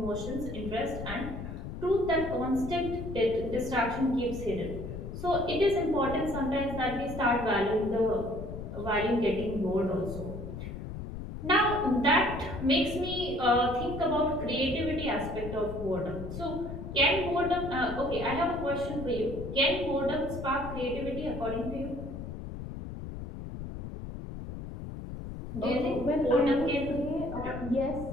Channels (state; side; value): noise; left; rumble, 8 dB below the sound